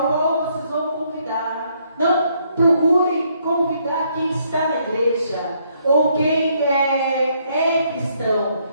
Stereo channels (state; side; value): inverted; both; correlation -0.71